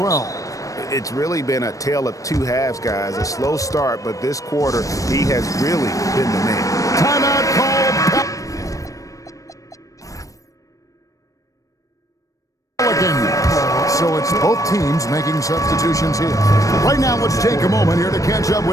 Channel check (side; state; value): right; late; 0.16 ms